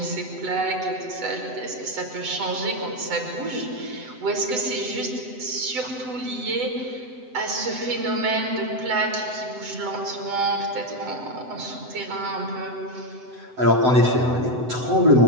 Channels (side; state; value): left; late; 7.9 ms